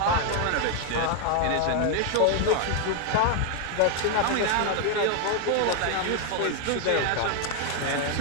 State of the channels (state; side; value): different; both; correlation 0.01